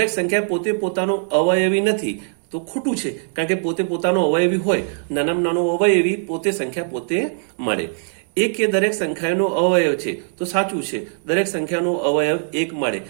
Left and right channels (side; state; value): left; silent; digital silence